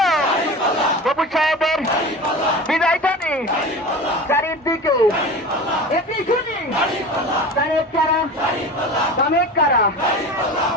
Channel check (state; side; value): normal; both; correlation 0.33